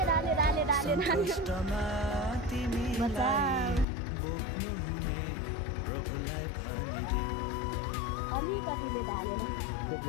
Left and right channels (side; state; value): right; drops out; at 3.9 s